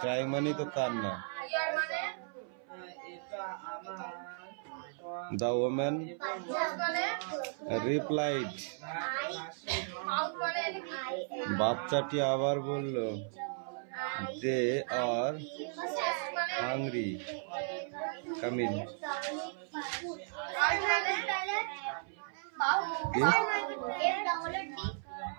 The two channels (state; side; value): silent; left; 54 dB below the other